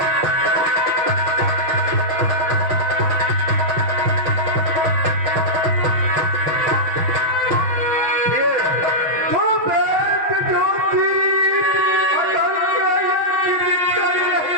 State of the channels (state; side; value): late; left; 5.9 ms